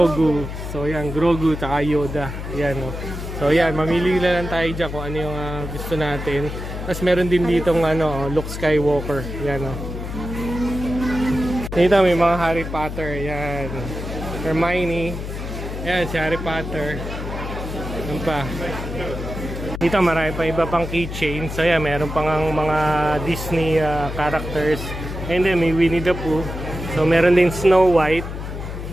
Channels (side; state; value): left; noise; hum, 7 dB below the sound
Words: So yan, Grogu tsaka Yoda. Yan o. So yan, mamili lang tayo dyan kung ano yung gusto natin. Tapos meron din ditong Luke Skywalker. Yan o. Dito may mga Harry Potter. Yan. Hermione. Yan, si Harry Potter. Yan pa. Dito marami pa iba pang keychain. So yan, meron pang mga Disney characters. And then may Winnie the Pooh. So meron din Snow White.